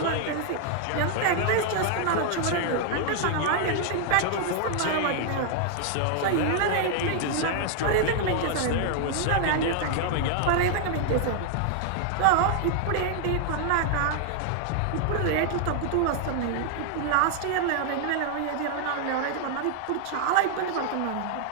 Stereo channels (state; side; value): different; both; correlation 0.00